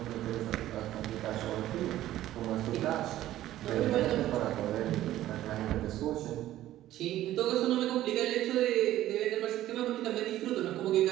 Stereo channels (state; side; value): quieter; left; 13.9 dB